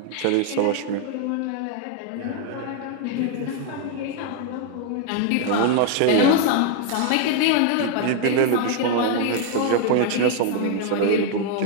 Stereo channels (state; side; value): different; both; correlation 0.00